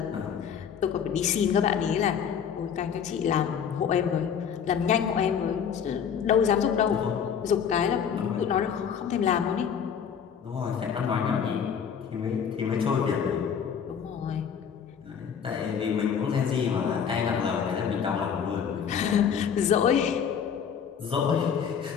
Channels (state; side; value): quieter; right; 7.5 dB